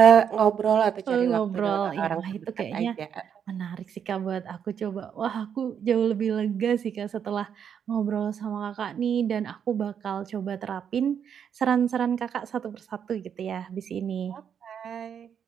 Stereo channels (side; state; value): left; quieter; 8.0 dB